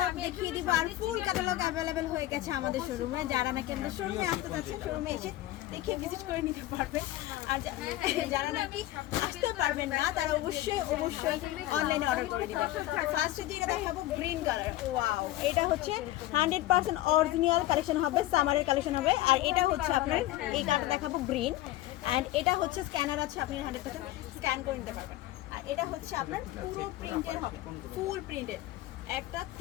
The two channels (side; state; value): right; quieter; 15.6 dB